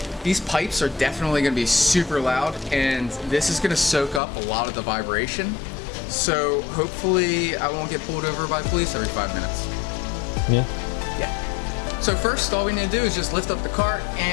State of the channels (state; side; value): drops out; right; at 4.2 s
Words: These pipes are definitely gonna be super loud, and this is gonna soak up a lot of the vibration. So hopefully I won't get pulled over by police every 5 minutes. Yeah. Yeah. So first, all we need to do is just lift up the cart